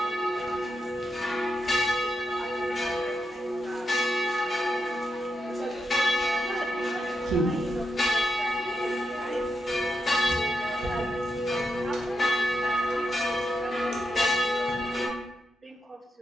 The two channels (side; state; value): both; normal; correlation 0.85